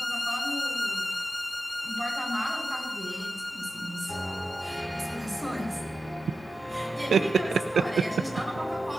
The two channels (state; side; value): normal; both; correlation 0.91